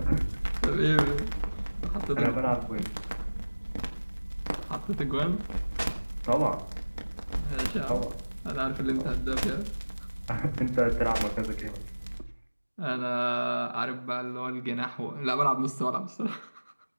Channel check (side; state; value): both; inverted; correlation -1.00